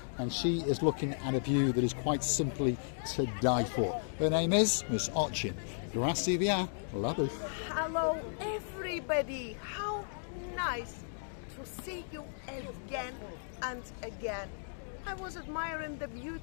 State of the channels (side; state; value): right; silent; digital silence